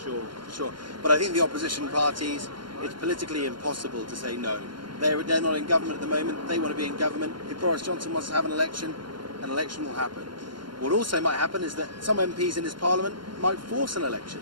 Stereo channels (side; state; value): left; late; 0.72 ms